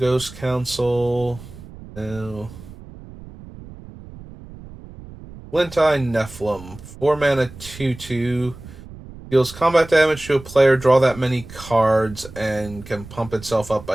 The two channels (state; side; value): noise; right; rumble, 17 dB below the sound